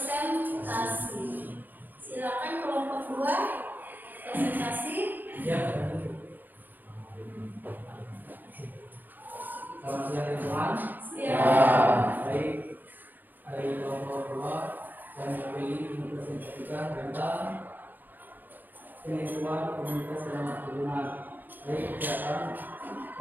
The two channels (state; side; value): late; left; 0.087 ms